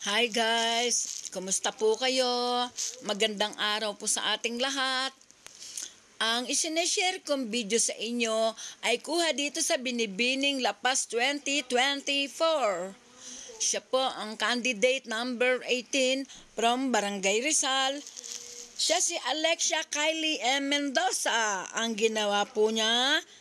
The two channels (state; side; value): identical; both; correlation 1.00